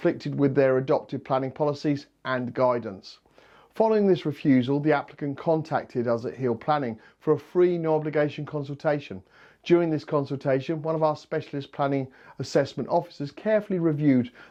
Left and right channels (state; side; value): identical; both; correlation 1.00